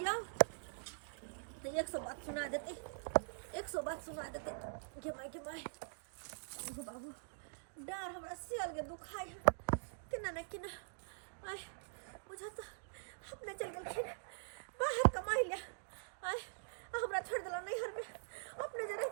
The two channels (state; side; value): silent; left; digital silence